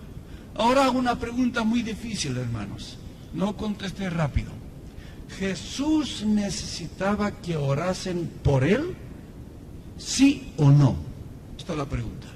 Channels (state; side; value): identical; both; correlation 1.00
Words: Ahora hago una pregunta muy difícil, hermanos. No contesté rápido. ¿Jesús necesitaba que orasen por él? ¿Sí o no? Esta es la pregunta.